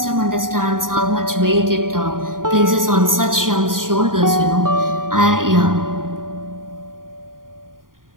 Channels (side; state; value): left; late; 0.90 ms